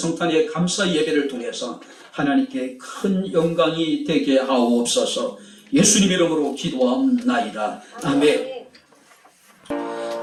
감사 예배를 통해서 하나님께 큰 영광이 되게 하옵소서. 예수님 이름으로 기도하옵나이다. 아멘.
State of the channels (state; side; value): identical; both; correlation 1.00